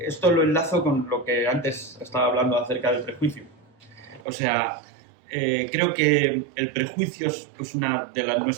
esto lo enlazo con lo que antes estaba hablando acerca del prejuicio. O sea, creo que el prejuicio es una de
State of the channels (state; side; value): drops out; left; at 4.2 s